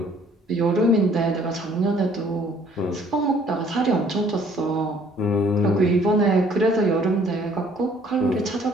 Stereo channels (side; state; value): both; normal; correlation 0.59